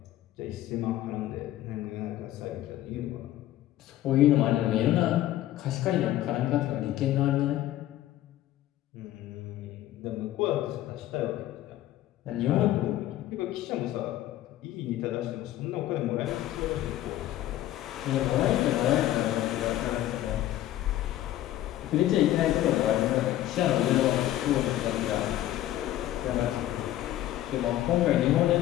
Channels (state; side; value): quieter; right; 13.8 dB